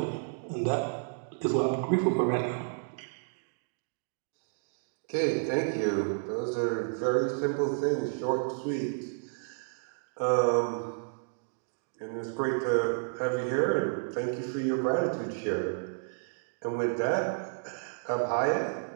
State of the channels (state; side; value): silent; left; digital silence